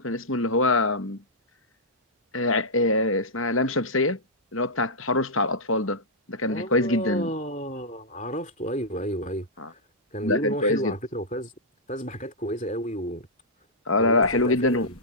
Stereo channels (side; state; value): both; normal; correlation -0.12